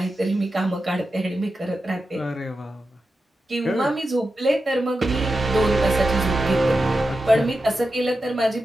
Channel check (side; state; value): both; normal; correlation 0.90